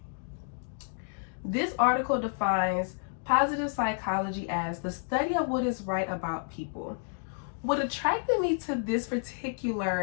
This article defines positive psychology as the study of what is right about people. What attracted me to this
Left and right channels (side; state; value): right; silent; digital silence